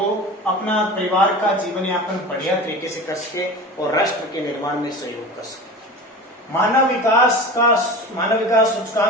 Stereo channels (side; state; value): both; normal; correlation 0.33